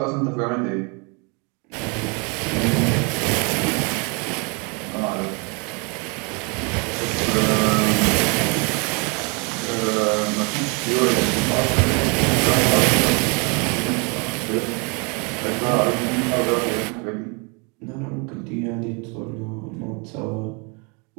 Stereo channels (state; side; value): quieter; left; 32.9 dB